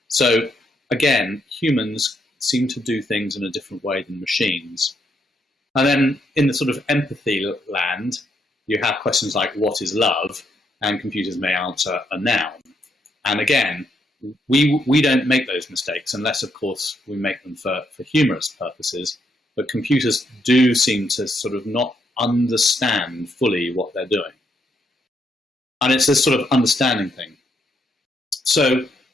So again, humans seem to do things in a different way than machines. And then in the sort of empathy land, you have questions like, what is love? And computers may answer a noun. And again, we don't make those mistakes unless, of course, we make them for humorous purposes. But computers do seem to sort of not understand fully what they're doing. And it's this sort of understanding thing. So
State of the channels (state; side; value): normal; both; correlation 0.76